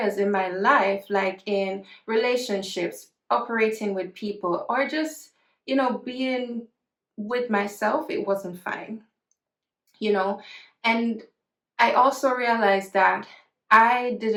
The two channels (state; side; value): identical; both; correlation 1.00